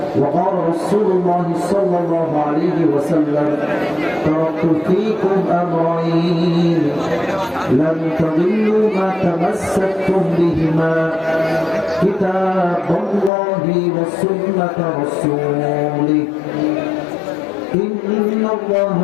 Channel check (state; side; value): drops out; right; at 13.3 s